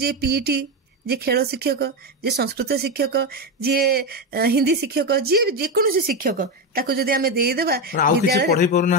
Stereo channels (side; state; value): both; normal; correlation 0.13